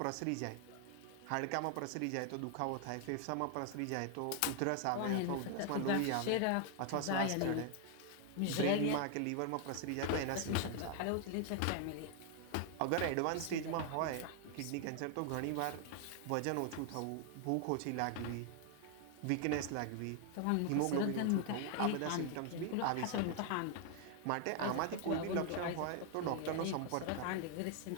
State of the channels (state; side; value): different; both; correlation 0.00